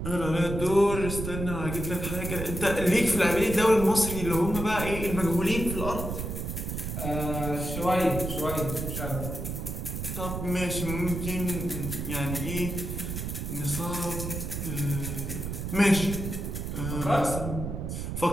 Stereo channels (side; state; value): right; noise; rumble, 5 dB below the sound